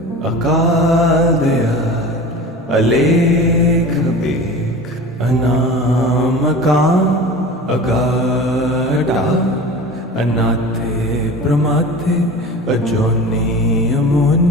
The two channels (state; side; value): normal; both; correlation 0.35